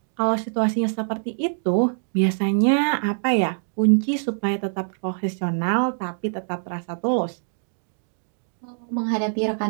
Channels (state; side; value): silent; left; digital silence